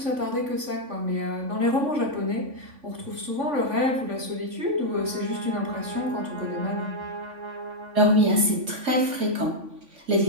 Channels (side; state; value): left; late; 3.5 ms